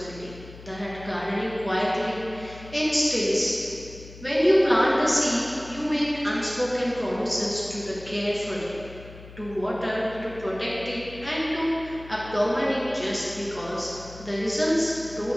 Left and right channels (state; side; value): noise; left; hum, 17 dB below the sound